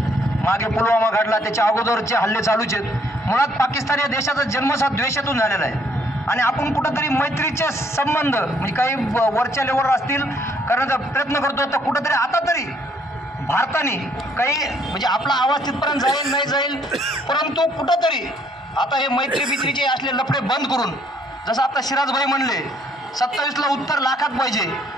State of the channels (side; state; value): both; normal; correlation 0.66